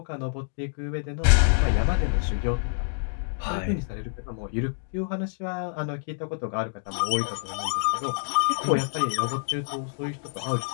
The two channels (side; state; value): right; silent; digital silence